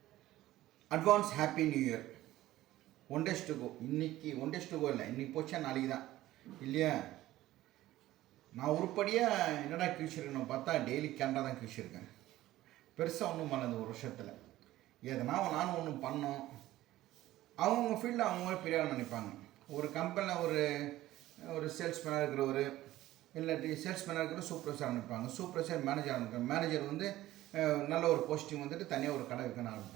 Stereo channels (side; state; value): left; quieter; 15.6 dB